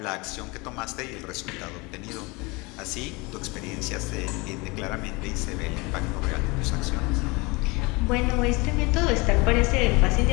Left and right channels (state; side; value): quieter; right; 25.7 dB